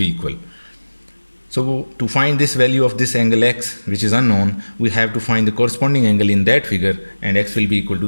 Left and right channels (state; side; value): inverted; both; correlation -1.00